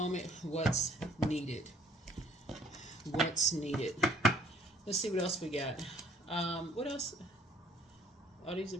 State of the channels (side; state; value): both; normal; correlation 0.59